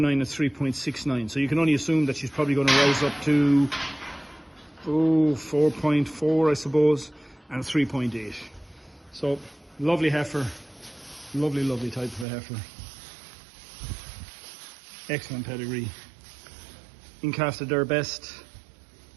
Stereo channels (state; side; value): drops out; left; at 12.2 s